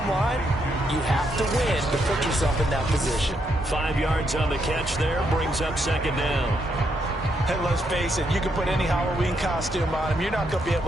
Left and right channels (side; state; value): both; normal; correlation 0.77